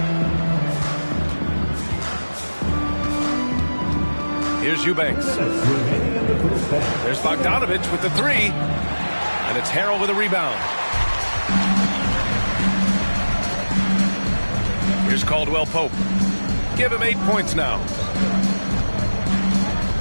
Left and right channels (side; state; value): both; inverted; correlation -1.00